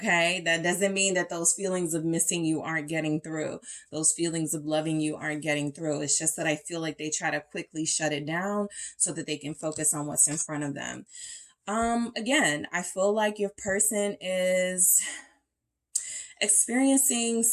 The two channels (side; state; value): both; identical; correlation 1.00